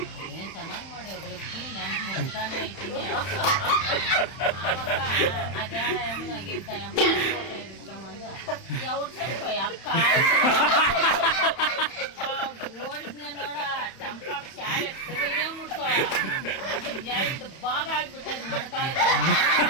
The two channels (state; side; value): late; right; 31 ms